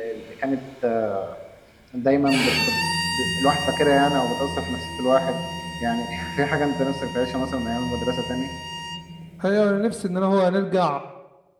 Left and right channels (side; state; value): both; identical; correlation 1.00